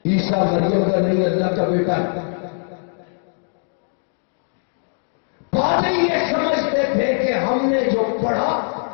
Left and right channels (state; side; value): silent; right; 62 dB below the other